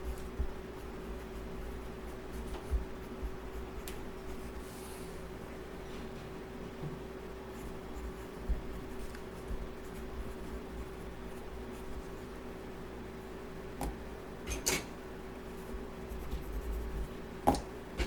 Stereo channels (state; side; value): identical; both; correlation 1.00